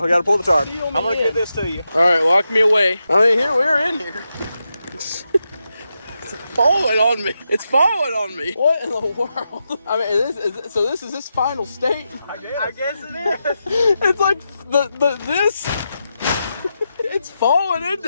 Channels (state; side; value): inverted; both; correlation -0.87